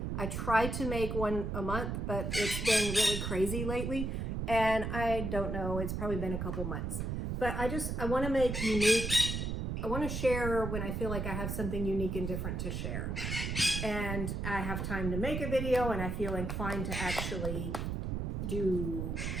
I try to make one a month, but it's been really crazy lately. And I don't know, it's probably been a couple months. But I want to make unique, I want to share when I feel like I have something unique and different to share. And I have time to make a video, and I feel inclined to actually do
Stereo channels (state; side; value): noise; right; rumble, 2 dB below the sound